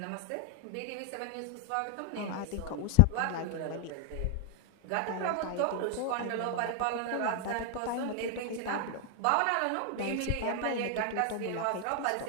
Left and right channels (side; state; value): both; different; correlation 0.00